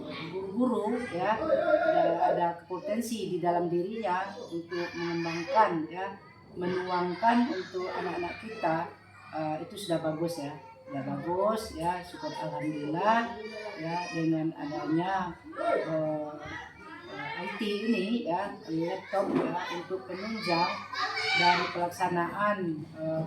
guru-guru ya ada potensi di dalam dirinya untuk mengembangkan ya, menuangkan untuk anak-anak kita, itu sudah bagus ya. Ya bagus ya, syukur alhamdulillah ya, dengan adanya IT ini ya, laptop ya, untuk penunjang dari pelaksanaan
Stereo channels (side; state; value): both; identical; correlation 1.00